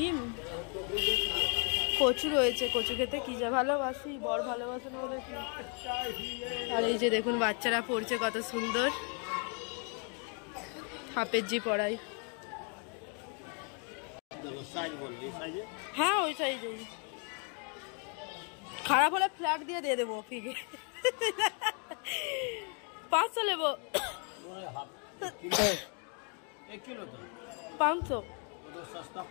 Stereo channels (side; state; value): right; quieter; 39.0 dB